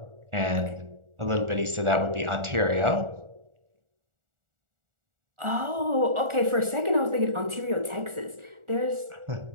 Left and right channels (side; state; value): left; late; 1.4 ms